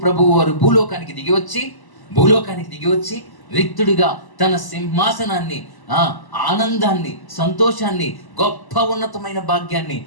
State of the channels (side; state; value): right; late; 1.0 ms